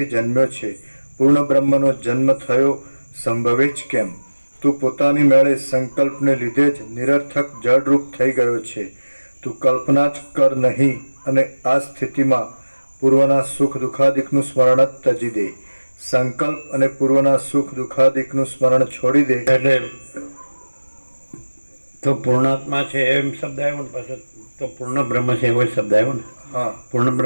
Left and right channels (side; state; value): both; inverted; correlation -1.00